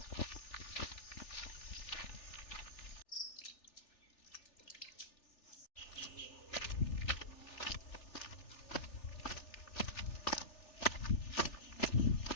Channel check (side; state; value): right; late; 3.4 ms